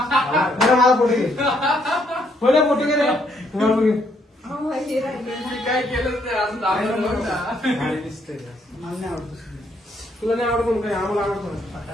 बरं मला फोटो घे फोटो फोटो घे रे तुम्हाला घे अहो, हे राहिलं. काय केलं ते असं दाखवलं नव्हतं. मला नाही आवडत तुला नाही आवडत म्हणून काय आम्हाला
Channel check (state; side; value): normal; both; correlation 0.71